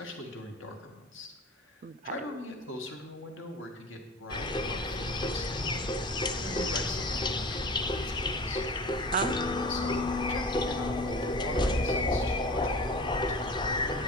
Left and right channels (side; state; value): both; normal; correlation 0.37